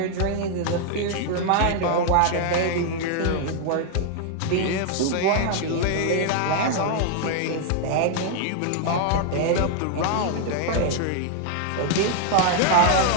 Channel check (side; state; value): both; different; correlation 0.00